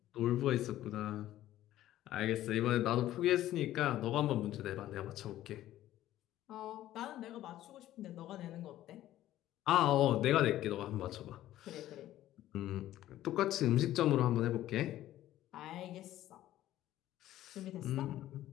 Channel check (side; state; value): right; quieter; 13.8 dB